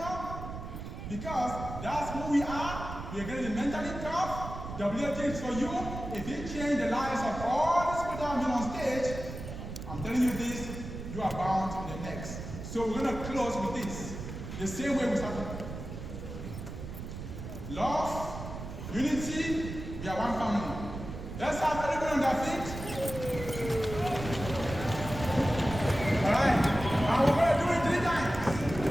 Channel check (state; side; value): noise; right; rumble, 9 dB below the sound